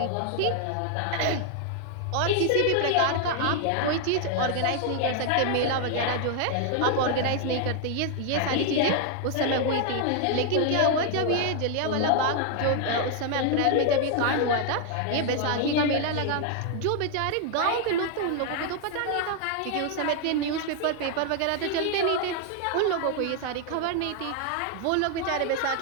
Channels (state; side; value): different; both; correlation 0.00